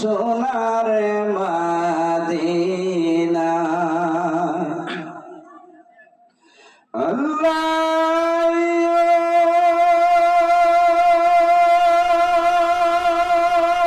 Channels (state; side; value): identical; both; correlation 1.00